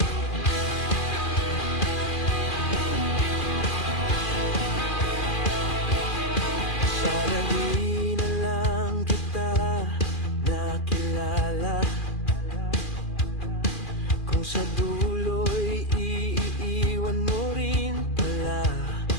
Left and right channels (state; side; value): late; right; 2.4 ms